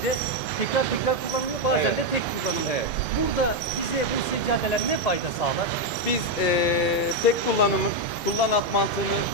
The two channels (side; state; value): both; normal; correlation 0.03